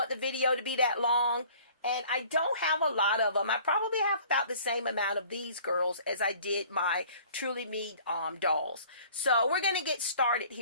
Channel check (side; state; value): both; inverted; correlation -0.51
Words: the video to be that long. And I don't have a lot of them. I probably have about the same amount of these girls as I did my Truly Me dolls. So we're going to get started